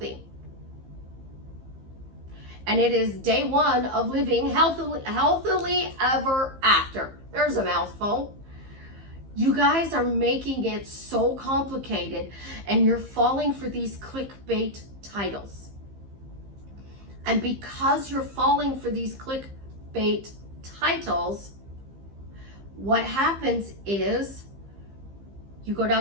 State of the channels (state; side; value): late; left; 15 ms